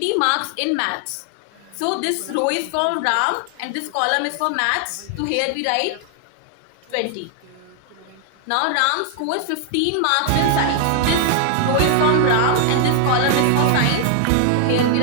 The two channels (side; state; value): both; different; correlation 0.00